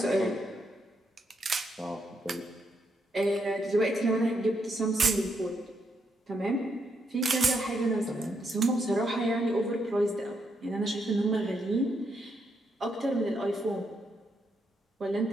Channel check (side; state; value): both; normal; correlation 0.78